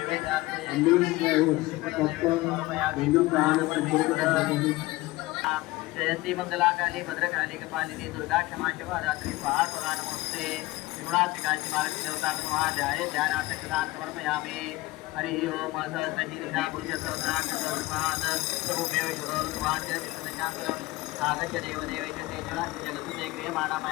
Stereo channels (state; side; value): quieter; right; 19.8 dB